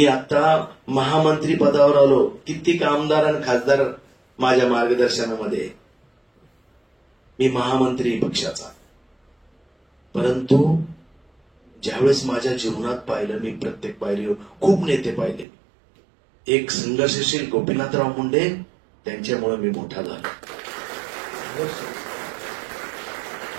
आता महामंत्री पदावर आलो. कित्येक आमदार आणि खासदार माझ्या मार्गदर्शनामध्ये, मी महामंत्री पक्षाचा. परंतु ज्यावेळेस माझ्या जीवनात पाहिलं, मी प्रत्येक पायरीवर खूप नेते पाहिले. एक संघर्षशील गोपीनाथराव मुंडे, त्यांच्यामुळे मी मोठा झालो.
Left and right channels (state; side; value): drops out; left; at 15.5 s